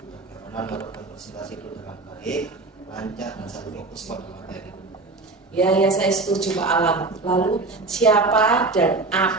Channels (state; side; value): quieter; left; 3.5 dB